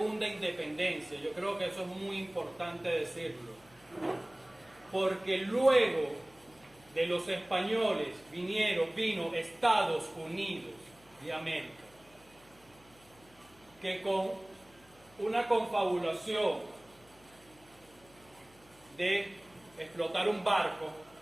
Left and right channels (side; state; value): left; noise; hum, 27 dB below the sound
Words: independencia? Yo creo que eso es muy importante decirlo. Porque luego de los españoles vino Estados Unidos de América, que con una confabulación de explotar un barco,